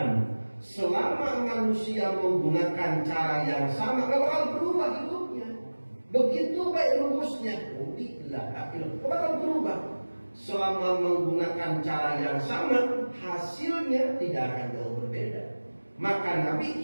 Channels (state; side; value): inverted; both; correlation -1.00